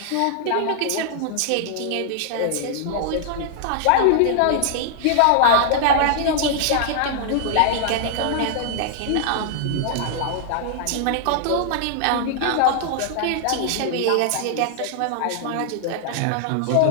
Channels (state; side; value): different; both; correlation -0.01